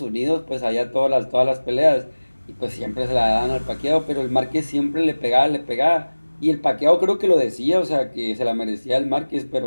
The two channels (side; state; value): both; inverted; correlation -1.00